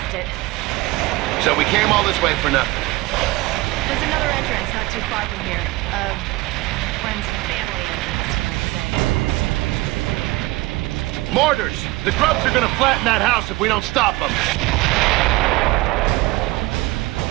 it. So we came all this way for nothing. There's another entrance not too far from here. Friends and family entrance, you might say. Mortars! The grubs are gonna flatten that house if we don't stop them.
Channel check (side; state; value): left; quieter; 20.4 dB